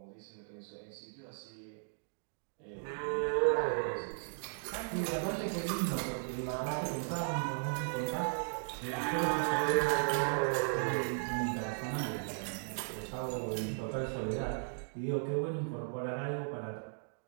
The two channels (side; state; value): left; silent; digital silence